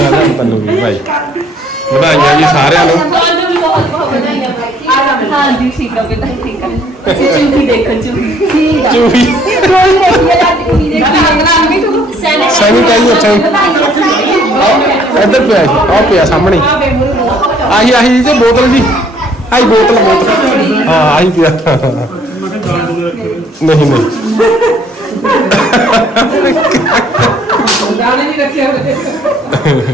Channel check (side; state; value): both; normal; correlation 0.62